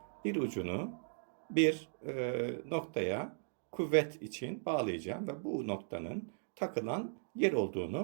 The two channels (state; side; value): silent; left; digital silence